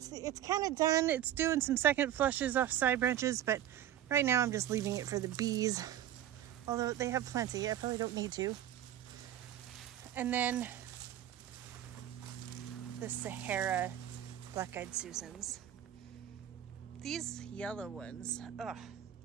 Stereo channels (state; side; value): quieter; left; 11.4 dB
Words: kind of done. It's doing some second flushes off side branches, but right now I'm just leaving it for the bees. Although they have plenty, I probably don't need to. And then the Sahara black-eyed Susans. These yellow ones, oh,